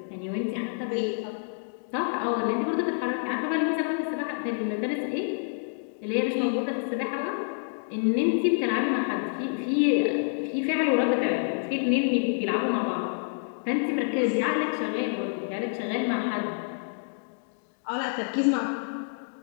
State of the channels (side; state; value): right; silent; digital silence